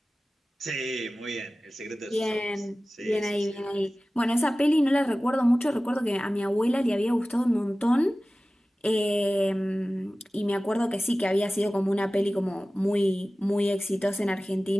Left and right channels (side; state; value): both; normal; correlation 0.97